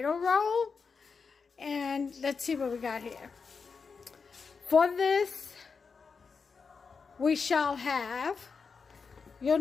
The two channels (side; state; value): right; quieter; 5.3 dB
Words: roll. And let's see what we got here. For this, we shall have, you'll